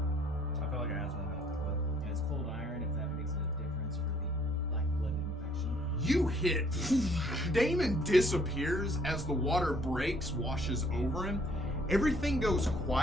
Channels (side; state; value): both; normal; correlation 0.62